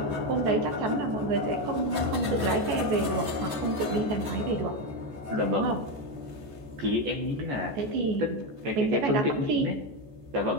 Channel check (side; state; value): left; late; 14 ms